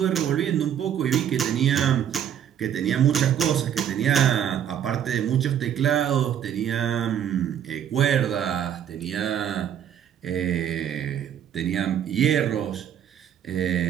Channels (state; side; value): quieter; left; 9.5 dB